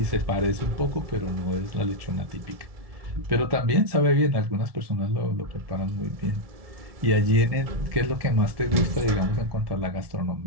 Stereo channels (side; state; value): left; late; 1.7 ms